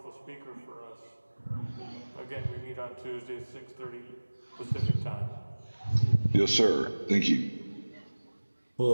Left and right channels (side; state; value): both; inverted; correlation -1.00